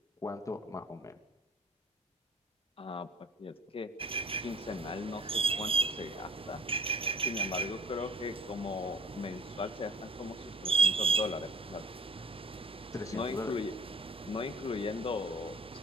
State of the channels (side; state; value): both; normal; correlation 0.52